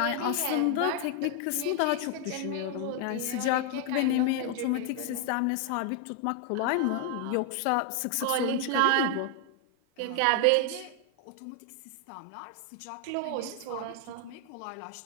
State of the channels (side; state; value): both; different; correlation 0.00